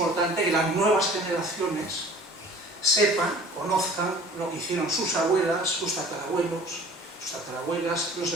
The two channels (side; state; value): both; normal; correlation 0.47